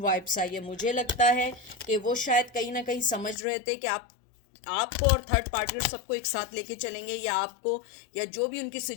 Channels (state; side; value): drops out; right; at 3.4 s